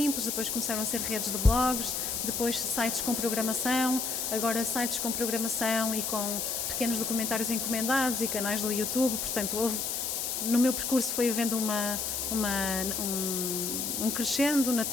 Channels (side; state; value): left; noise; hiss, 1 dB below the sound